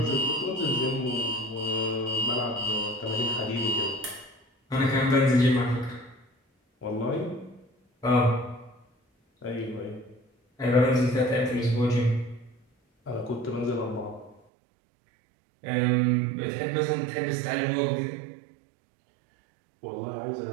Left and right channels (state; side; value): drops out; left; at 14.4 s